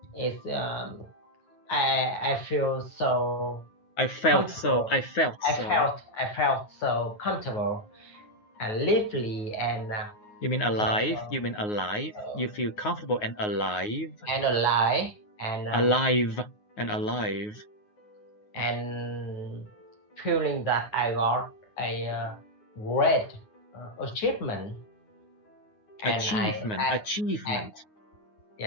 it's I feel so. I felt so comfortable and lively and. You mean alive? You feel comfortable and alive. And feeling that I got a great achievement. Achievement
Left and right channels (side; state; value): right; late; 9.5 ms